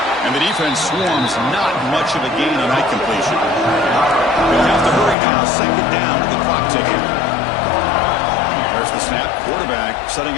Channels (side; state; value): right; drops out; at 5.2 s